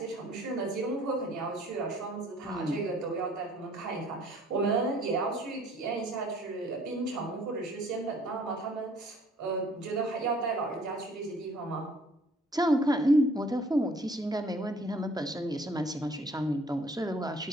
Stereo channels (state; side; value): normal; both; correlation 0.57